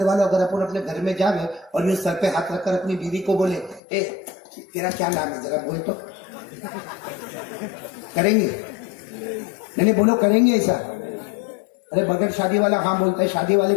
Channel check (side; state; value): right; drops out; at 3.8 s